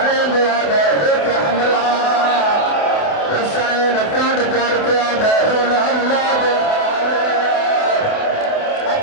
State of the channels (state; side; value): late; right; 28 ms